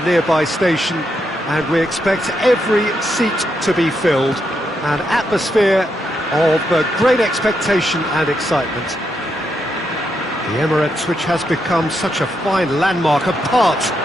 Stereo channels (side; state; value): both; normal; correlation 0.81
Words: nearby station, and we expect every seat to be filled. An atmosphere of great expectation and excitement. The Emirates, which has become such a fine landmark, a part